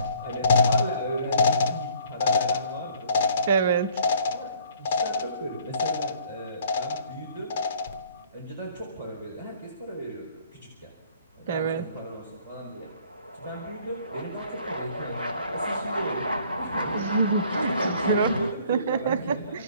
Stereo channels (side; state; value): both; inverted; correlation -0.57